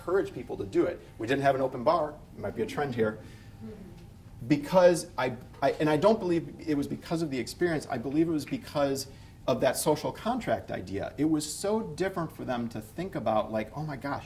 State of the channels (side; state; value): both; identical; correlation 1.00